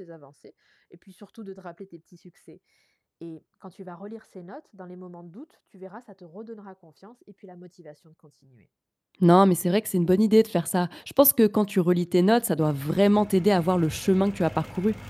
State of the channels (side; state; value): both; identical; correlation 1.00